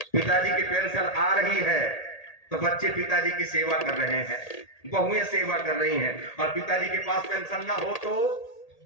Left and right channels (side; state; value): right; late; 1.8 ms